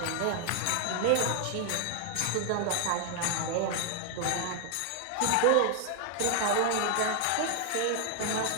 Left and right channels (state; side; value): different; both; correlation 0.00